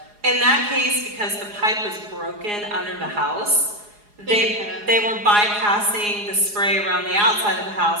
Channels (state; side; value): late; left; 4.8 ms